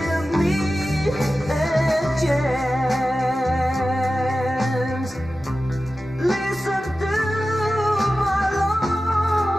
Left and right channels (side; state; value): both; normal; correlation 0.94